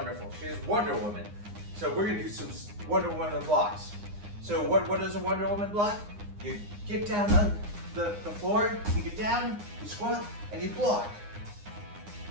She is Wonder Woman. So we're gonna do some Wonder Woman blocks. So what does a Wonder Woman block? You get down on the floor, you get down, you squat, and you block.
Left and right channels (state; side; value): late; left; 9.7 ms